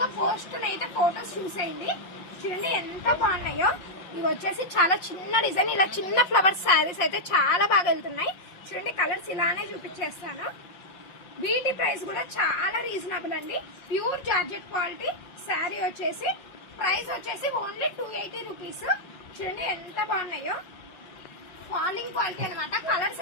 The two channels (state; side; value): late; right; 5.5 ms